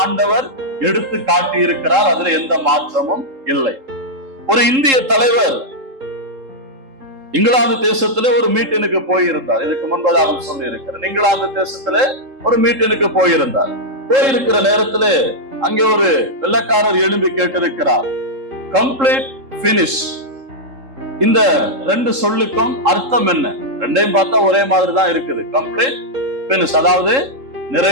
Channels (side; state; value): left; late; 3.7 ms